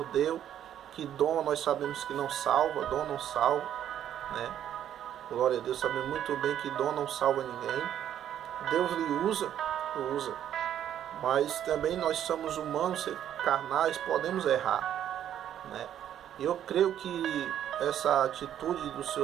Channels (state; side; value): quieter; left; 10.5 dB